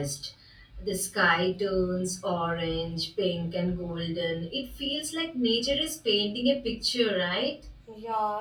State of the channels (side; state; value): both; identical; correlation 1.00